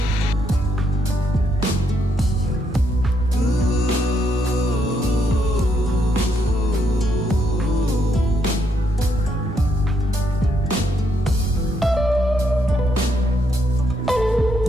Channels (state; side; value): normal; both; correlation 0.76